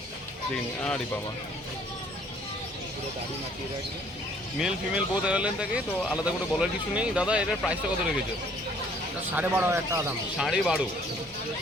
দেখে নিন, আরে বাবা, মেল ফিমেল বোথ অ্যাভেলেবল থাকে, তো আলাদা করে বলার কিছু নেই। দাদা এটার প্রাইসটা কত রেখেছো? 12,500 টাকা দাম। 12.5।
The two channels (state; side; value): normal; both; correlation 0.59